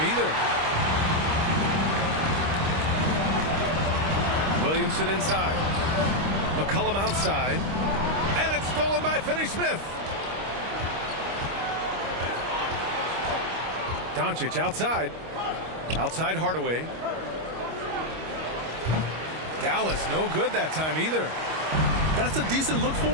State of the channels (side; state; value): left; late; 25 ms